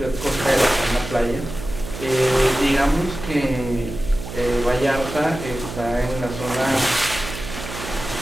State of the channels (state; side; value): noise; right; hum, 10 dB below the sound